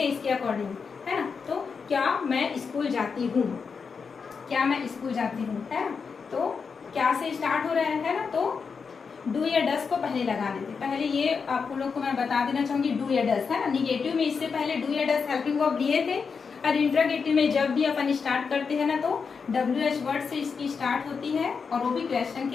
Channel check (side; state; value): right; quieter; 5.5 dB